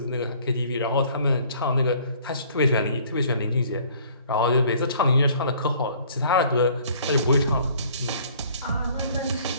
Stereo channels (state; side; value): inverted; both; correlation -0.55